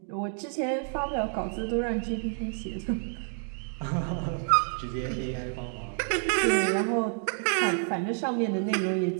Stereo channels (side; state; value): left; silent; 59 dB below the other